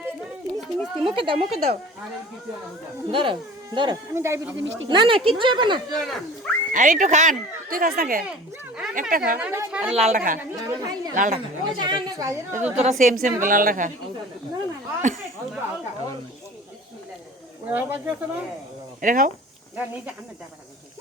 মিষ্টি মুখে দাও ধরো আমি ডায়াবেটিস মিষ্টি না না কিচ্ছু হবে না আর একটু খান তুই খাস না কে একটা খা আর লালটা খা লালটা খা তো তোরা সেম সেম লালটা খা এটা খাও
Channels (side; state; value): both; normal; correlation 0.42